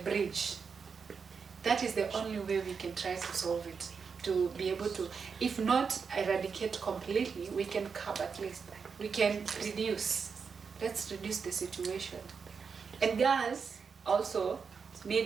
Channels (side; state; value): left; quieter; 5.7 dB